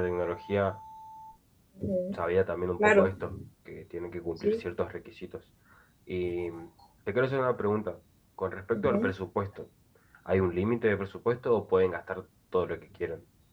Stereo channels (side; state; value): both; identical; correlation 1.00